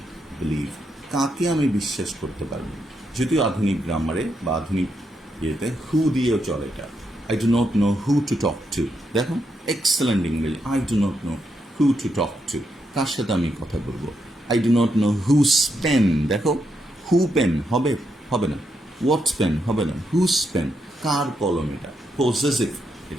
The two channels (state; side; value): normal; both; correlation 0.81